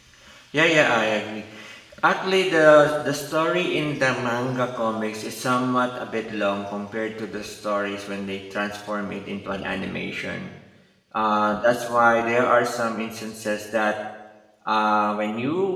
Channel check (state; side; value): identical; both; correlation 1.00